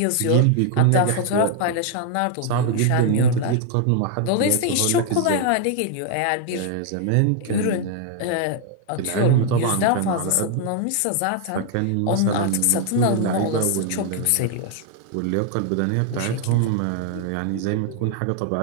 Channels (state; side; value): different; both; correlation 0.00